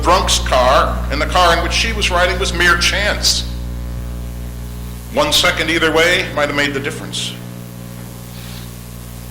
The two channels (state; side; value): identical; both; correlation 1.00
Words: car and the car in which she was riding was mere chance. 1 second either way might have made the difference.